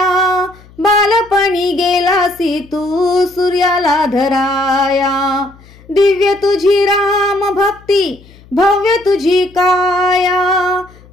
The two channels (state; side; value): noise; left; hum, 25 dB below the sound